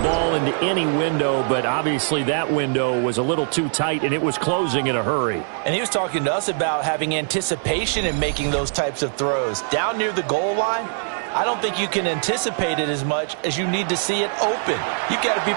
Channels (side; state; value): left; silent; 64 dB below the other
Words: into any window, but obviously that window was a little too tight and it was closing in a hurry. And he was talking to us about having anticipation in making those types of throws. Down near the goal line, I don't think you can anticipate it as much as you need to see it open. You've got to be